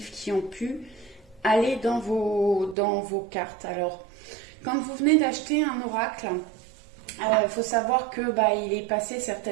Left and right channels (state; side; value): drops out; left; at 2.8 s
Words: qui ont pu aller dans vos cartes. Alors, quand vous venez d'acheter un oracle, il faut savoir que il est passé